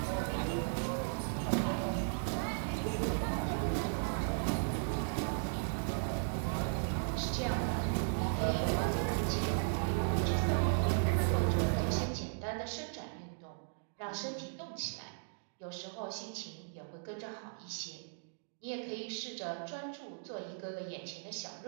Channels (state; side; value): silent; left; digital silence